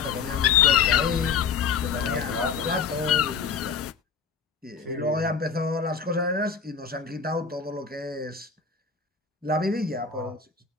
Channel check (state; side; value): quieter; right; 6.0 dB